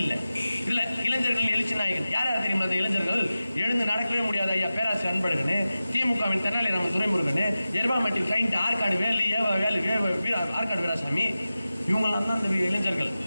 இல்லை. இல்ல இளைஞர்கள் எழுச்சி நாயகன் யார் யார் தெரியுமா? அந்த இளைஞர்கள் எழுந்து நடக்கவே முடியாது. ஐயா பேராசிரியர் அன்பழகன், திமுகவின் தென்னாலிராமன் துரைமுருகன், எருபாமட்டி கிளைண்ட் ஆற்காடு வேலு ஆற்காடு வீராசாமி, இவங்கெல்லாம் தான் அந்த இளைஞர்கள்.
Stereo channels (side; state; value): both; inverted; correlation -0.95